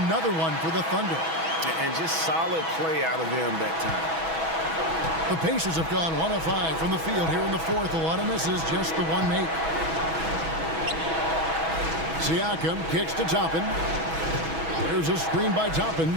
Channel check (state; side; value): late; left; 6.1 ms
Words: one for the Thunder. And just solid play out of them that time. The Pacers have gone 1 of 5 from the field here in the fourth. A lot of misses, just the one make. Siakam kicks to Toppin. There's a screen by Toppin.